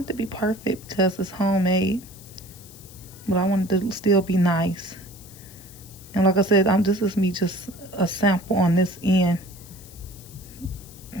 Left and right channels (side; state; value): left; noise; hiss, 20 dB below the sound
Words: it to be perfect because it's homemade, but I want it to still be nice. And like I said, this is me just a sample on this end.